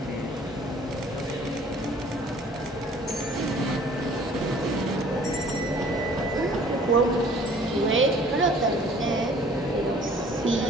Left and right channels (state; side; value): normal; both; correlation 0.53